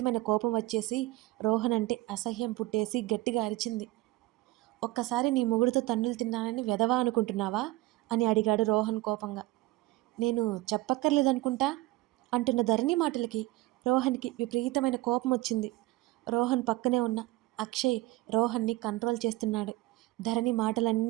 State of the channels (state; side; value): quieter; left; 19.1 dB